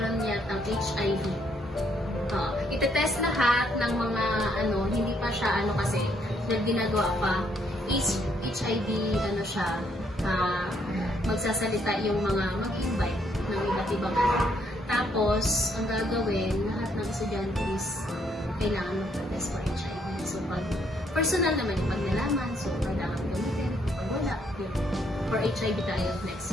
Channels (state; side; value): normal; both; correlation 0.71